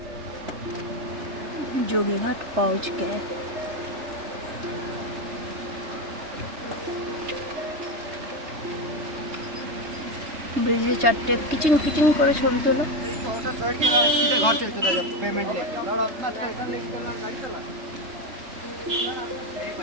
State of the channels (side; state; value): left; late; 3.2 ms